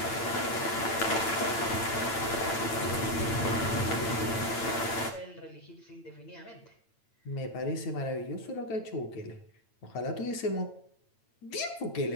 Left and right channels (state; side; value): late; right; 8.9 ms